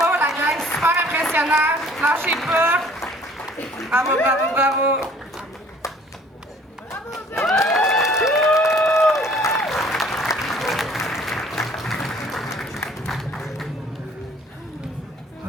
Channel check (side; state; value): both; normal; correlation 0.55